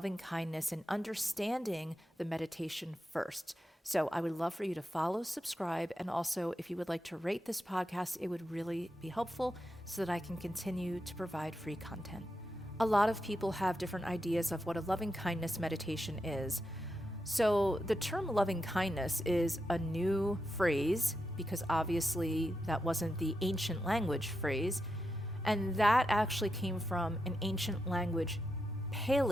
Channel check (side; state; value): both; normal; correlation 0.86